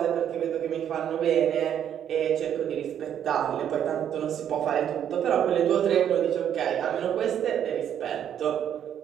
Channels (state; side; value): quieter; left; 9.6 dB